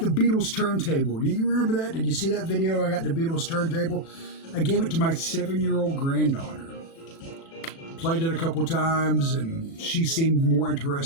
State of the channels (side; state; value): right; late; 36 ms